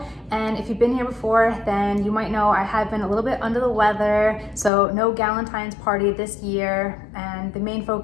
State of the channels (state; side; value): drops out; right; at 4.7 s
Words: And if you've been here before, then you might know I have been a little bit under the weather, so no Valentine's party this year. And the main